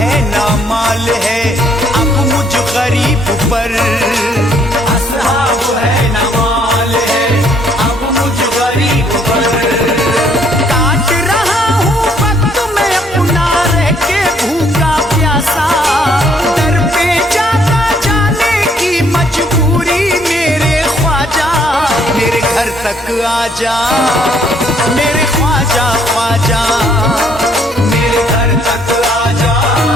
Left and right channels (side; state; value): both; normal; correlation 0.66